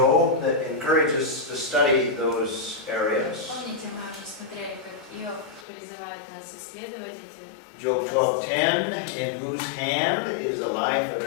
that encourages us to study those areas. Помните, мы уже смотрели, как Иов призывает нас исследовать эти. Job 12:10, in whose hand is the life of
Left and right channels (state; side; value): drops out; right; at 5.7 s